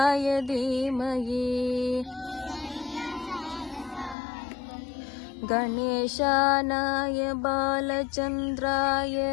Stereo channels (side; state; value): right; drops out; at 4.2 s